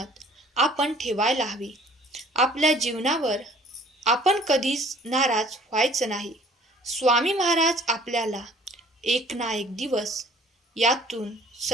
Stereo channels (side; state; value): both; normal; correlation 0.53